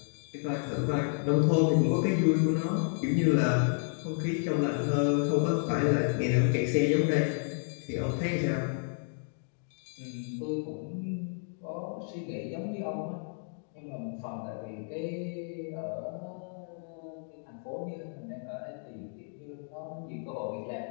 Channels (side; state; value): right; silent; 57 dB below the other